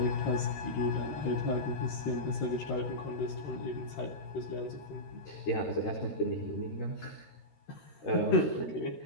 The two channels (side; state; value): right; late; 13 ms